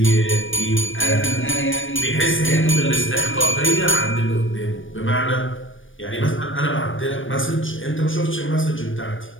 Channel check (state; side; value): late; right; 0.57 ms